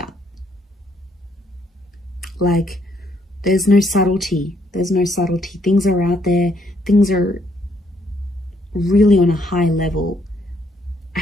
Like there's no subtlety. There's no subtlety. Things are out there. Things are really on a high level. I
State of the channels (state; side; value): normal; both; correlation 0.71